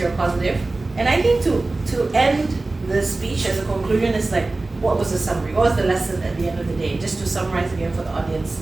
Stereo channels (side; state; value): left; quieter; 3.2 dB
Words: positive. And I think to end the speech as a conclusion is like, what was the summary? What was the lesson at the end of the day? Just to summarize again for the audience,